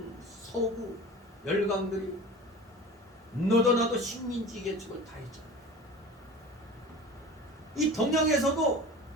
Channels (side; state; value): both; normal; correlation 0.37